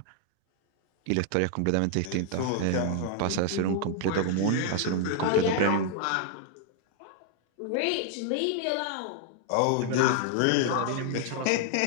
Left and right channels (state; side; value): different; both; correlation 0.00